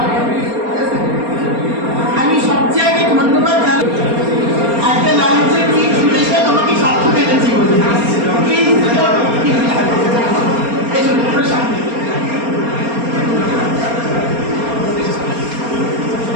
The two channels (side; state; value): left; late; 4.3 ms